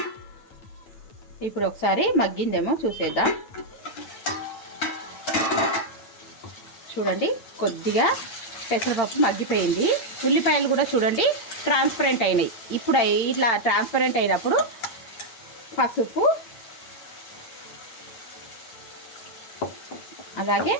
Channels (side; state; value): right; late; 8.8 ms